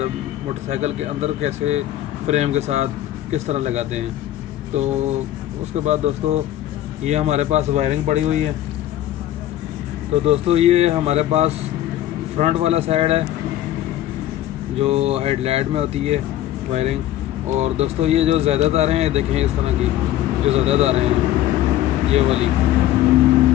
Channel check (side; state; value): right; quieter; 13.2 dB